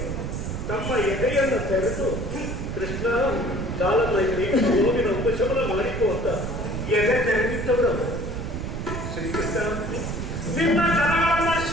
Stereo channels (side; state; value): right; noise; rumble, 4 dB below the sound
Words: ತಮ್ಮ ಎದೆಯನ್ನು ತೆರೆದು ಕೃಷ್ಣ ಕಾಲದಲ್ಲಿ ನೋವಿನ ಉಪಶಮನ ಮಾಡಿಕೋ ಅಂತ ಎದೆ ತೆರೆದಿದ್ದವರು ಶ್ರೀಕೃಷ್ಣ. ನಿನ್ನ ಜನಗಳನ್ನ